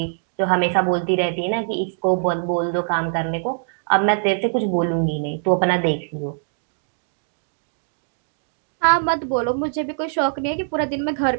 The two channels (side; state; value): left; silent; digital silence